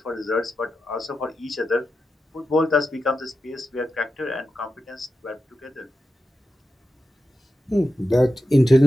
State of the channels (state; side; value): normal; both; correlation 0.90